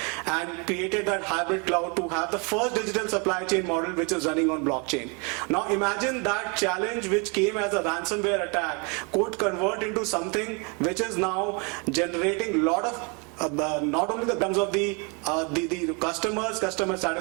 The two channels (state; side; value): quieter; left; 32.8 dB